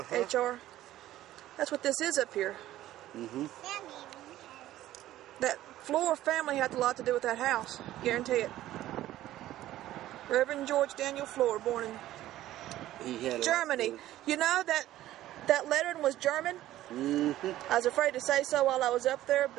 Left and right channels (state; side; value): quieter; left; 14.2 dB